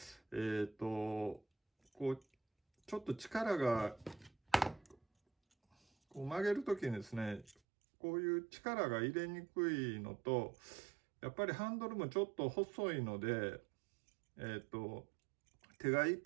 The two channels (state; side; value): drops out; left; at 7.6 s